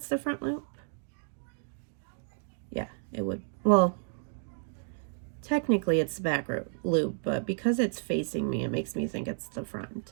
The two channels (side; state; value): left; silent; 57 dB below the other